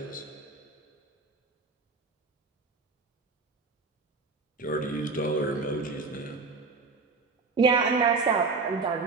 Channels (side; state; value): left; quieter; 4.2 dB